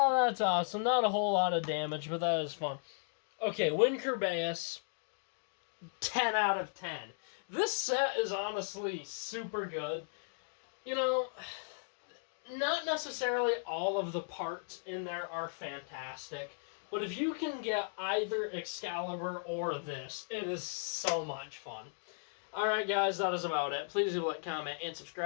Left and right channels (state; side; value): silent; right; digital silence